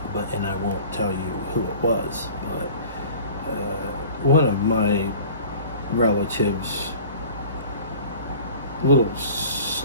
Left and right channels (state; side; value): inverted; both; correlation -0.43